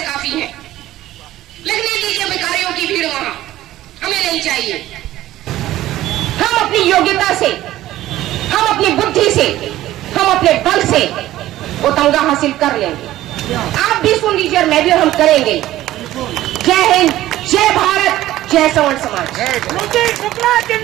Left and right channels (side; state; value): left; quieter; 14.8 dB